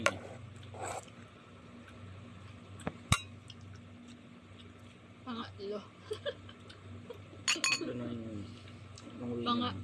eh. Pangatlo. Pangatlo na yun.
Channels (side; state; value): both; identical; correlation 1.00